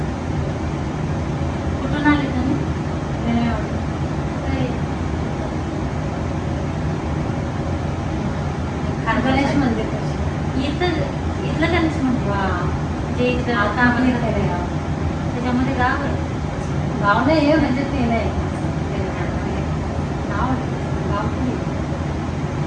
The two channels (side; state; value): both; identical; correlation 1.00